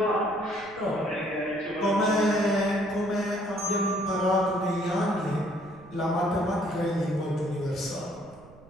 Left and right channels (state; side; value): noise; right; rumble, 23 dB below the sound